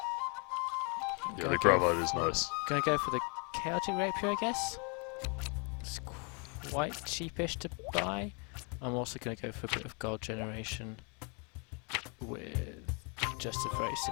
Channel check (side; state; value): right; quieter; 35.2 dB